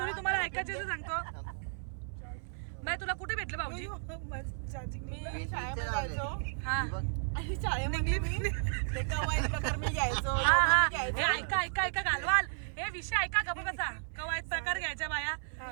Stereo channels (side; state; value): left; silent; 55 dB below the other